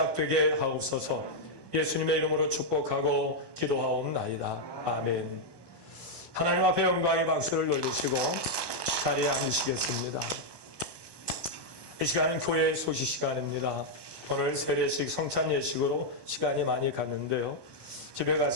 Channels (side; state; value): right; late; 1.2 ms